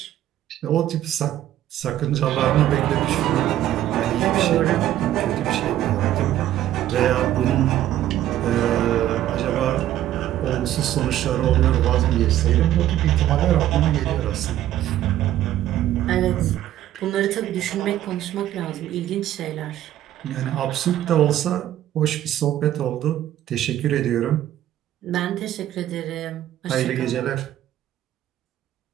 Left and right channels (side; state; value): left; quieter; 12.8 dB